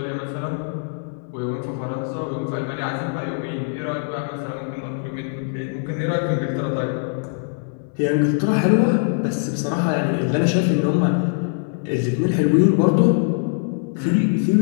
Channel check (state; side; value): silent; right; digital silence